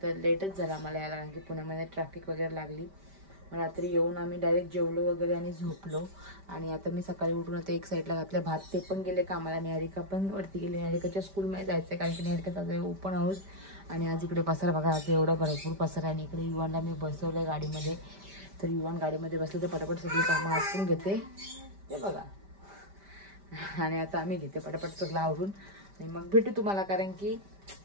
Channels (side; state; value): left; late; 5.1 ms